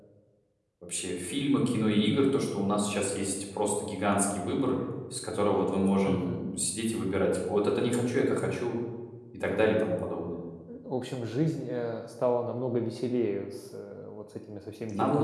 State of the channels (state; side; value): identical; both; correlation 1.00